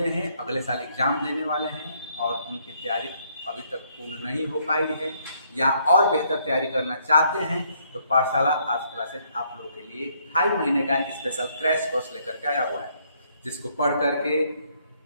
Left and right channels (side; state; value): both; inverted; correlation -0.69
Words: हैं, अगले साल एग्जाम देने वाले हैं और उनकी तैयारी अभी तक पूर्ण नहीं हो पाई है या और बेहतर तैयारी करना चाहते हैं, तो पाठशाला आर्ट्स क्लासेस आप लोगों के लिए 2.5 महीने का स्पेशल क्रैश कोर्स लेकर के आया हुआ है, जिसको पढ़ करके